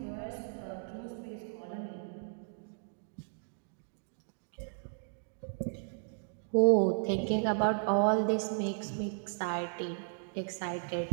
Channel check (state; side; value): silent; left; digital silence